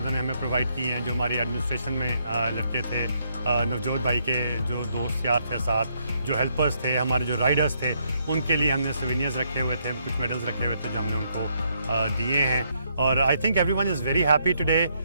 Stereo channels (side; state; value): both; inverted; correlation -0.74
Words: हमें प्रोवाइड किए हैं, जो हमारी एडमिनिस्ट्रेशन में लड़के थे, नवजोत भाई के जो दोस्त यार थे साथ, जो हेल्पर्स थे, हमारे जो राइडर्स थे, उनके लिए हमने सोवेनियर्स रखे हुए थे, कुछ मेडल्स रखे हुए थे जो हमने उनको दिए हैं। और I think everyone is very happy today.